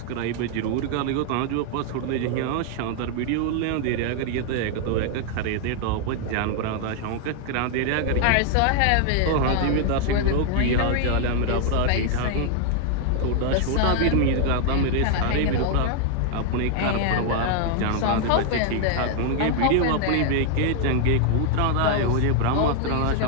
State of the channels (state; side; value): different; both; correlation 0.00